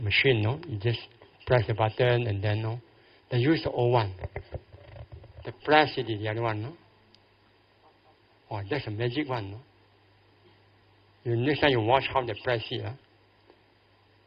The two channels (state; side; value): identical; both; correlation 1.00